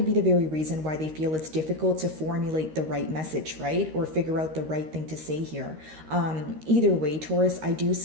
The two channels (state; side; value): late; left; 13 ms